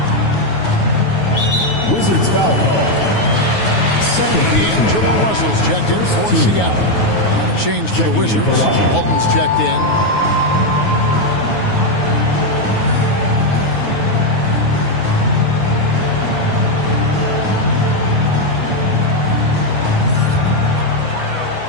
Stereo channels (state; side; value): late; right; 9.4 ms